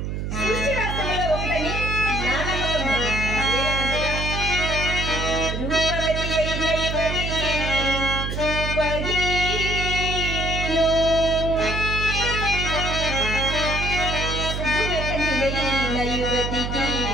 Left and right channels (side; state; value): right; noise; hum, 3 dB below the sound